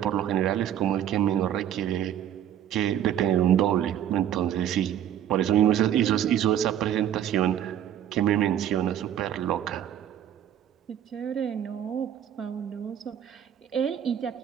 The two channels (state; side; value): quieter; left; 10.4 dB